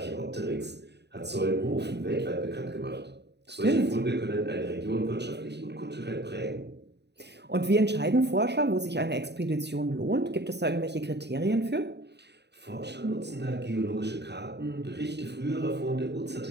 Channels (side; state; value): left; late; 0.49 ms